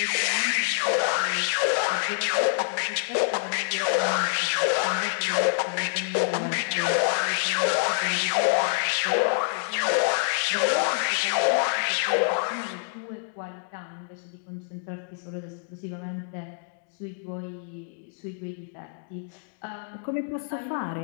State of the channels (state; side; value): silent; right; digital silence